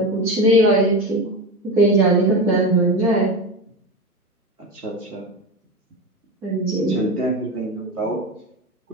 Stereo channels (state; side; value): normal; both; correlation 0.21